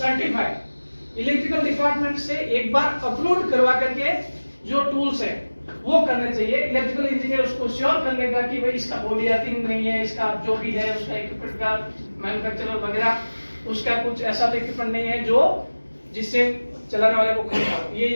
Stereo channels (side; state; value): both; inverted; correlation -1.00